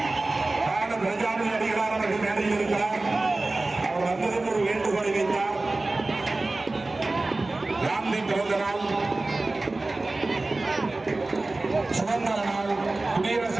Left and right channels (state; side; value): quieter; left; 3.1 dB